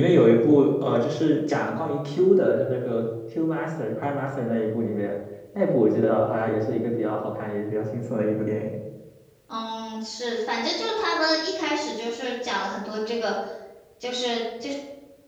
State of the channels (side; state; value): both; identical; correlation 1.00